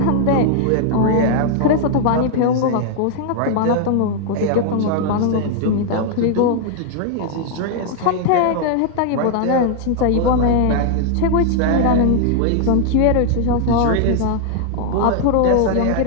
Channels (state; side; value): different; both; correlation 0.00